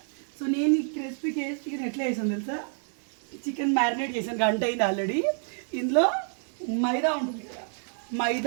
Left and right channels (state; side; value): silent; left; 59 dB below the other